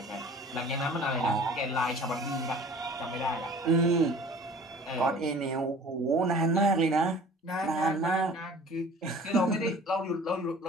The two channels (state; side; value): normal; both; correlation 0.46